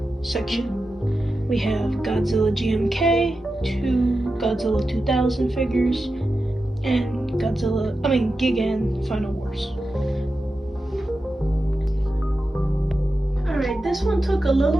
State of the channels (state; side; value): normal; both; correlation 0.91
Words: section. We have Godzilla GMK, 2 Godzilla 2000 figures, and Gigan Final Wars. Alright, this one took a